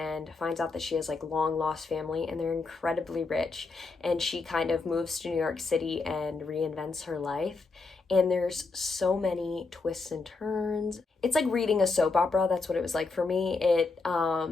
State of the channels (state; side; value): quieter; right; 4.0 dB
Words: finds out that she has like long lost family, and they're incredibly rich, and she kind of moves to New York City and reinvents her life. And there's so many twists and turns. It's like reading a soap opera. That's what it was like for me. It